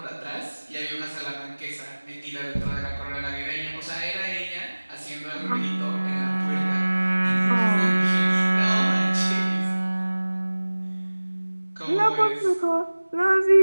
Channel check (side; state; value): both; inverted; correlation -1.00